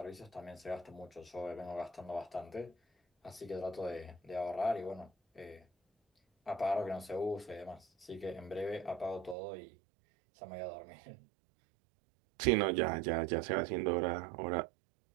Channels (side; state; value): left; drops out; at 9.3 s